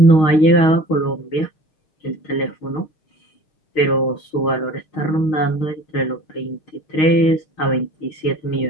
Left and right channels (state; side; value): late; right; 6.4 ms